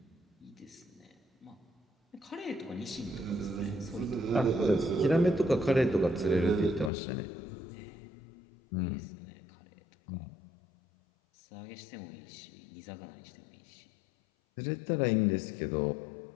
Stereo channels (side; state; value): right; drops out; at 6.9 s